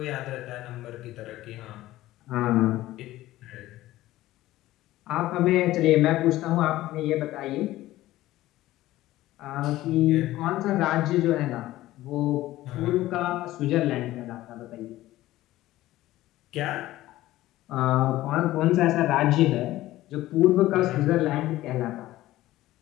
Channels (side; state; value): right; quieter; 15.9 dB